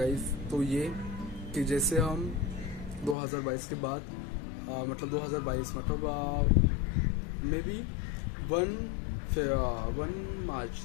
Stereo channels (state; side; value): drops out; right; at 3.2 s